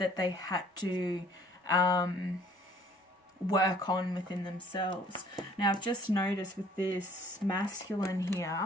they had to work on within themselves. Now, I've just noticed with this masculine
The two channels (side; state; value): both; normal; correlation 0.56